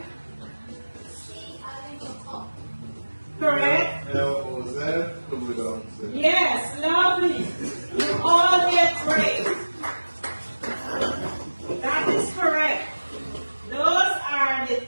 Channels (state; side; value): inverted; both; correlation -1.00